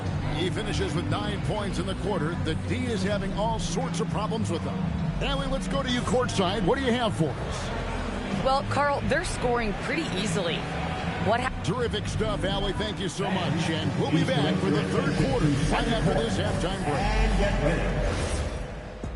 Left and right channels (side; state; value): both; identical; correlation 1.00